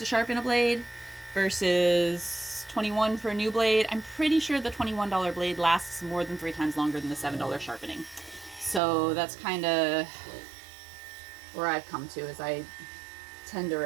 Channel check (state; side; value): drops out; left; at 8.8 s